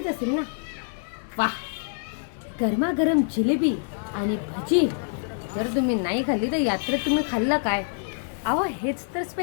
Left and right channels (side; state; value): right; silent; 58 dB below the other